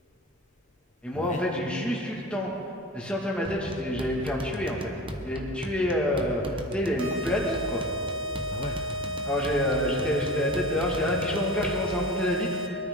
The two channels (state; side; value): normal; both; correlation 0.34